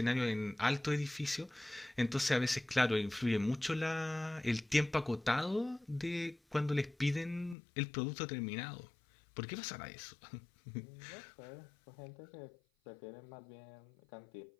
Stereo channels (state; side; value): drops out; right; at 7.6 s